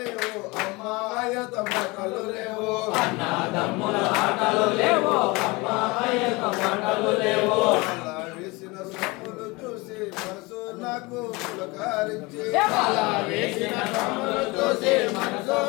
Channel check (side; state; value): right; quieter; 24.6 dB